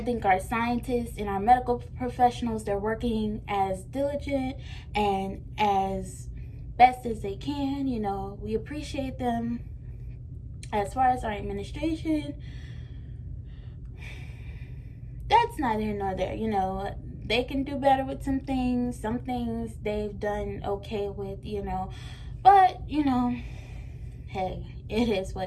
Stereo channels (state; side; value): identical; both; correlation 1.00